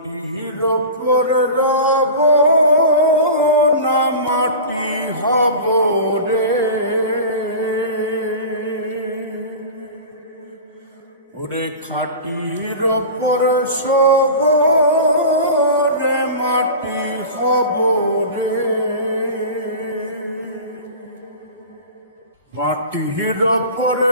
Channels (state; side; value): inverted; both; correlation -0.32